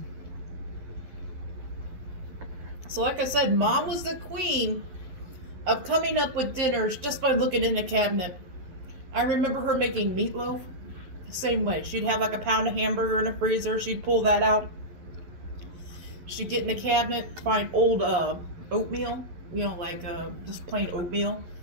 So like I said, Mom was the queen of coming up with dinners just by looking in the cabinet. I remember her making meatloaf the same way. She'd have like a pound of hamburger in the freezer. She'd pull that out. She'd get in the cabinet, find old oatmeal, you know, like just plain oatmeal.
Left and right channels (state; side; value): late; left; 11 ms